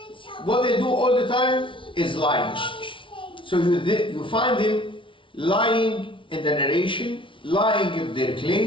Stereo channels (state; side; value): late; right; 0.25 ms